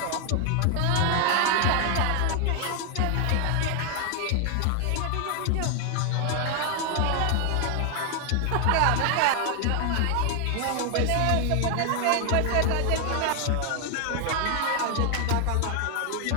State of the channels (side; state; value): both; different; correlation 0.00